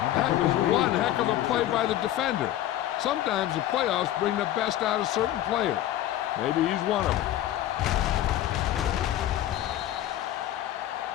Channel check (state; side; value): quieter; right; 13.0 dB